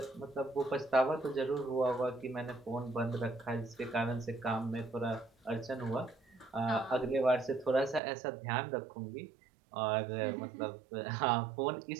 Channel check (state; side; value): drops out; left; at 8.0 s